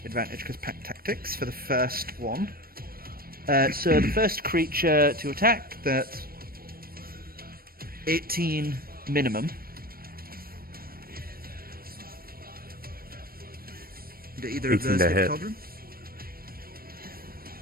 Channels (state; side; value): late; left; 0.43 ms